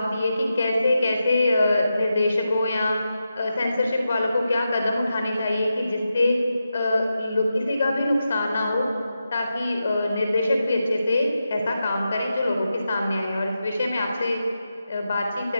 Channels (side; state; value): both; inverted; correlation -0.89